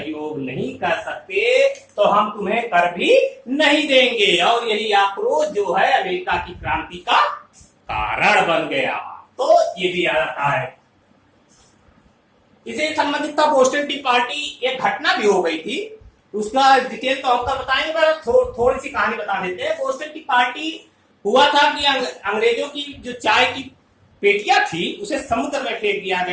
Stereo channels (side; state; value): both; identical; correlation 1.00